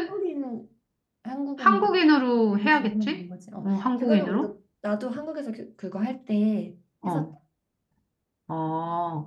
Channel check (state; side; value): identical; both; correlation 1.00